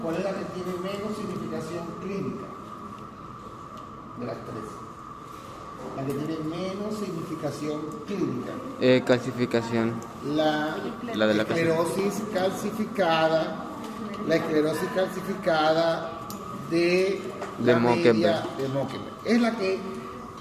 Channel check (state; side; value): identical; both; correlation 1.00